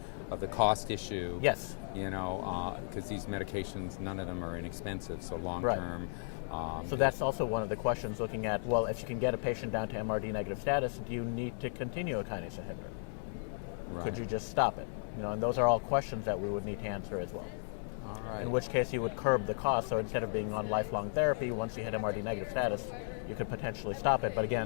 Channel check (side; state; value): right; silent; digital silence